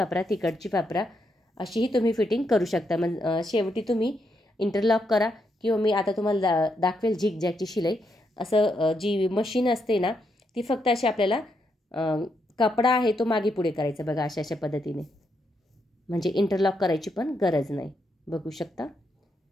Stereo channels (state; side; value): normal; both; correlation 0.80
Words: तिकडची वापरा, अशीही तुम्ही फिटिंग करू शकता. मग शेवटी तुम्ही इंटरलॉक करा किंवा मी आता तुम्हाला दाखवेल झिगझॅगची शिलाई. असं जी मशीन असते ना ती फक्त अशी आपल्याला कपडा आहे तो मागे पुढे करायचा बघा अशा पद्धतीने, म्हणजे इंटरलॉक करायची पण गरज नाही. बघू शकता